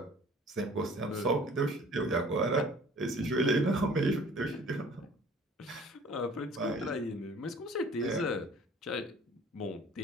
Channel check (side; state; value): both; normal; correlation 0.50